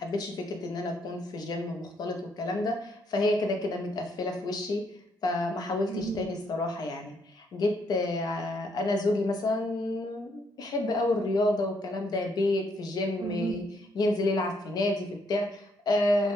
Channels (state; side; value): normal; both; correlation 0.72